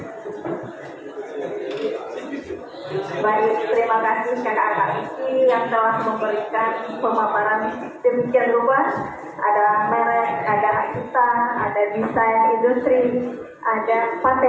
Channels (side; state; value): both; identical; correlation 1.00